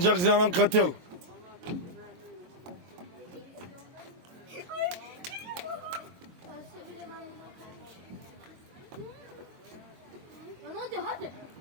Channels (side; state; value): left; late; 23 ms